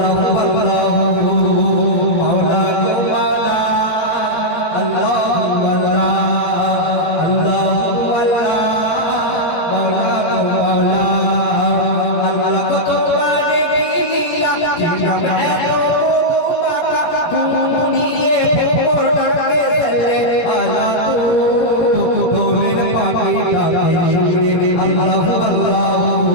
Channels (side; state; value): right; late; 17 ms